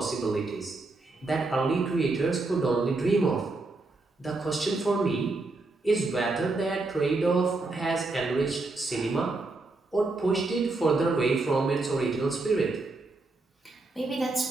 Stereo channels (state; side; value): quieter; left; 3.3 dB